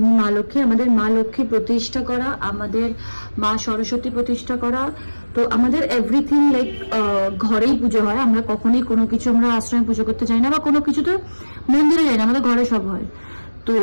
মা লক্ষ্মী, আমাদের মা লক্ষ্মী প্রতিষ্ঠা করা, আমাদের মা সরস্বতী প্রতিষ্ঠা করা। তো আমাদের এভরিথিং লাইক ঘরেই পুজো হয়। আমরা কখনোই কোনো কিছু আমরা আশ্রমে পুজো করতে যাই না, বা কোনো কিছু তো মন্দিরে যাই না, আমাদের ঘরে সব হয়। তো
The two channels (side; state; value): both; inverted; correlation -1.00